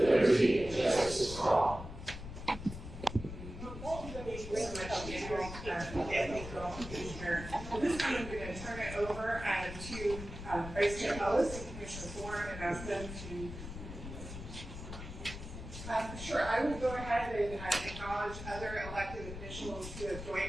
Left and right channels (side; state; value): left; noise; rumble, 10 dB below the sound